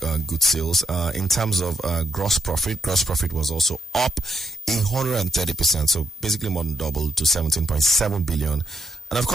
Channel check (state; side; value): normal; both; correlation 0.79